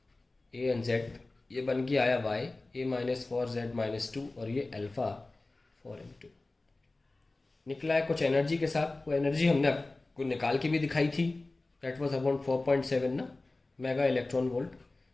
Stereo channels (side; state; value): right; quieter; 3.1 dB